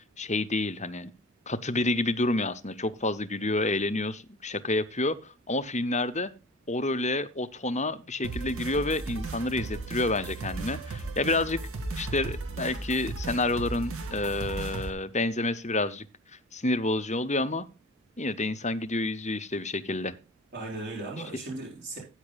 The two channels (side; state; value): both; normal; correlation 0.37